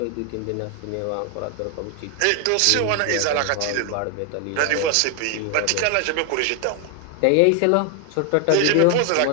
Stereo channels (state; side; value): different; both; correlation 0.01